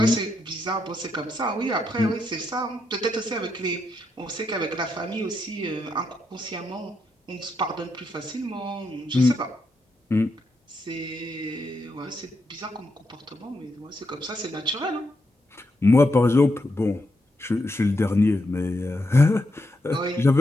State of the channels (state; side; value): normal; both; correlation 0.82